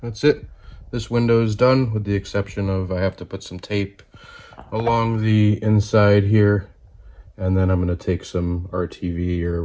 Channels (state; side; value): identical; both; correlation 1.00